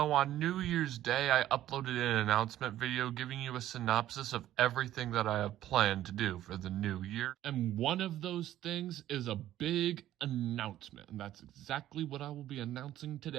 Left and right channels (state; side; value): quieter; left; 13.1 dB